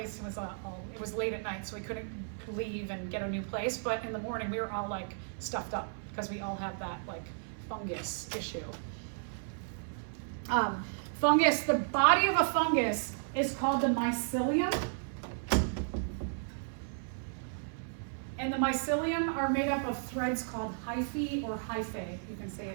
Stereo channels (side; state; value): left; silent; 55 dB below the other